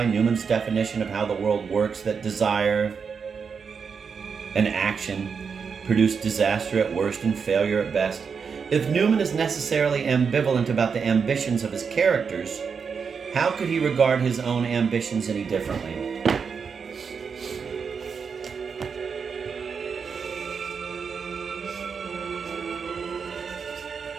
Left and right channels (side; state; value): left; quieter; 6.0 dB